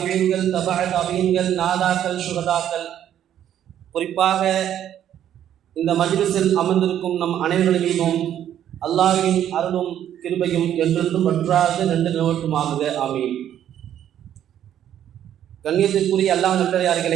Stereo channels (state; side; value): quieter; left; 10.6 dB